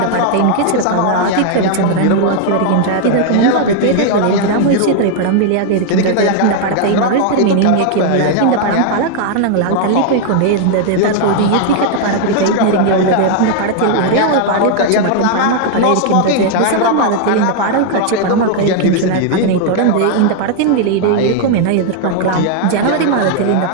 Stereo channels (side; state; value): both; different; correlation 0.00